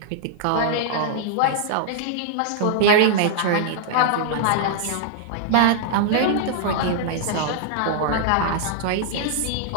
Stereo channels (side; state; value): both; different; correlation -0.01